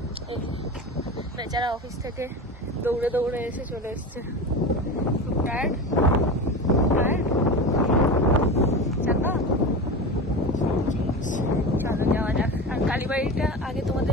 বেচারা অফিস থেকে দৌড়ে দৌড়ে এসে চলে এসছে, খুব টায়ার্ড। চলো যাওয়া যাক। আর কালীবাড়িটা আগে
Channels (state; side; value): normal; both; correlation 0.27